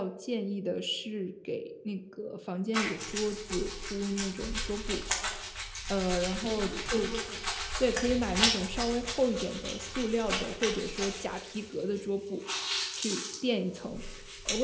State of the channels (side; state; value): both; identical; correlation 1.00